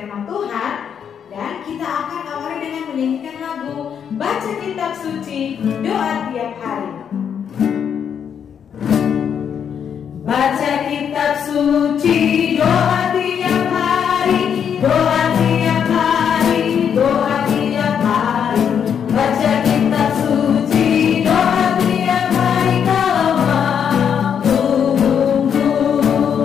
Tuhan. Dan kita akan awali dengan menyanyikan lagu Baca Kitab Suci, Doa Tiap Hari. Baca kitab suci, doa tiap hari, doa tiap hari, doa tiap hari. Baca kitab suci, doa tiap hari kalau mampu,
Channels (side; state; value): right; quieter; 7.9 dB